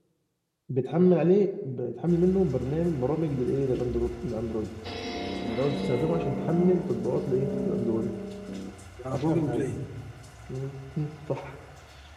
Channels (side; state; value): both; identical; correlation 1.00